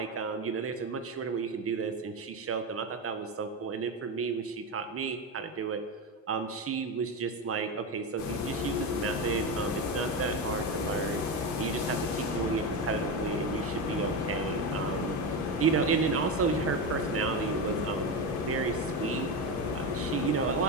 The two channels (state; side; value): normal; both; correlation 0.16